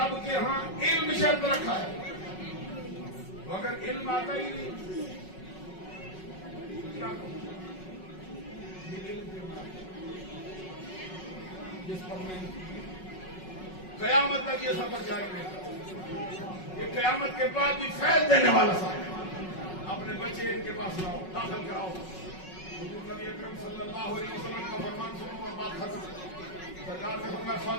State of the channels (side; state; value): right; late; 5.4 ms